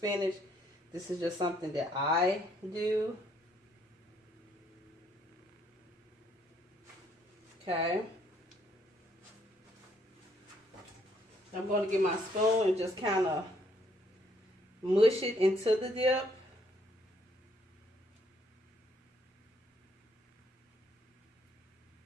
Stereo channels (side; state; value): both; normal; correlation 0.68